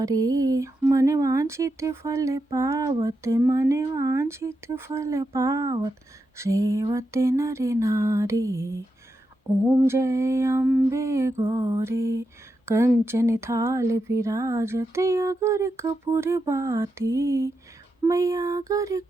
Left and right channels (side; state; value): both; normal; correlation 0.86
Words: मन वांछित फल पावत मन वांछित फल पावत सेवत नर नारी। ओम जय अम्बे गौरी। कंचन थाल विराजत अगर कपूर बाती। मैया अगर